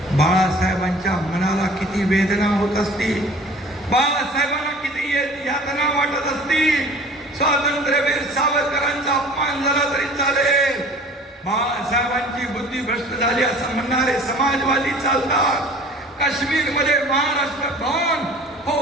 बाळासाहेबांच्या मनाला किती वेदना होत असतील, बाळासाहेबांना किती यातना वाटत असतील, स्वातंत्र्यवीर सावरकरांचा अपमान झाला तरी चालेल, बाळासाहेबांची बुद्धी भ्रष्ट झाली असं म्हणणारे समाजवादी चालतात, काश्मीरमध्ये महाराष्ट्र भवन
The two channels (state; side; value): normal; both; correlation 0.46